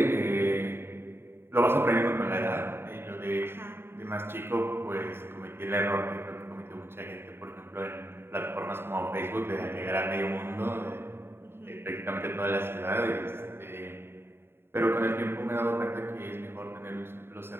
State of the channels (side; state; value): left; late; 0.11 ms